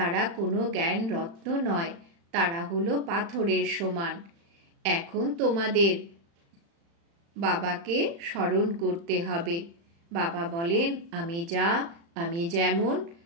কোনো জ্ঞান রত্ন নয়, তারা হলো পাথরের সমান। এখন তোমাদের বাবাকে স্মরণ করতে হবে। বাবা বলেন, আমি যা, আমি যেমন,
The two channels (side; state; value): left; late; 35 ms